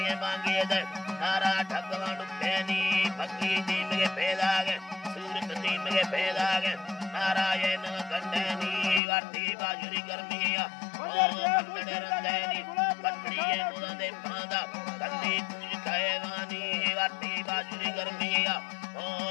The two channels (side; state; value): right; drops out; at 9.0 s